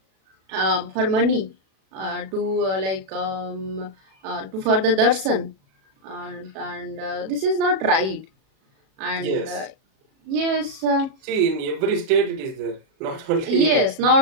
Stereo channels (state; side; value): late; left; 37 ms